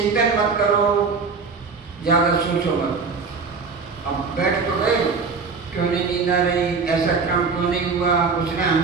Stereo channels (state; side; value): quieter; left; 4.8 dB